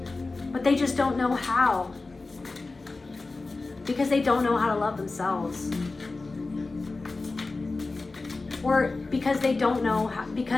but they just don't know how, because they don't know how to love themselves, or because they don't know how,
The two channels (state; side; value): quieter; right; 3.5 dB